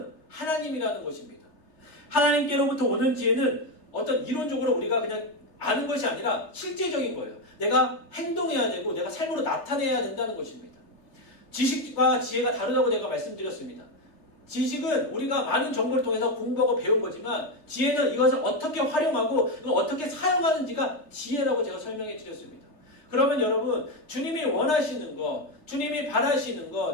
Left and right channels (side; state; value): right; late; 3.3 ms